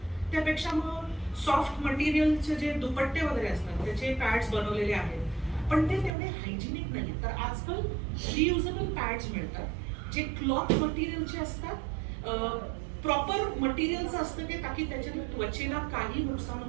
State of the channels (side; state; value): left; drops out; at 6.1 s